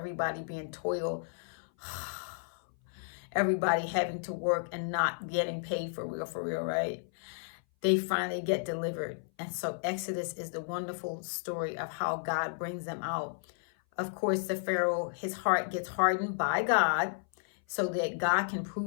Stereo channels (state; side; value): silent; right; 56 dB below the other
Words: being toiled, everybody having to work and not getting paid for real, right? They finally get delivered. And so Exodus is the wonderful story of how God brings them out. Of course, the Pharaoh, his heart gets hardened by God so that God can